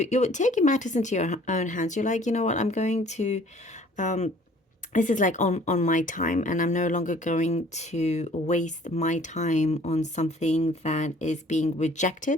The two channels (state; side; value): normal; both; correlation 0.54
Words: taking matters into your own hands. You're like, you know what, I'm going to this is like on my time, and I'm no longer going to waste my time on something that is being